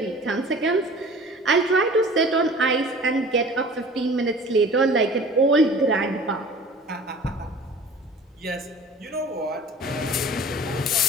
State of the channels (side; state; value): both; normal; correlation 0.44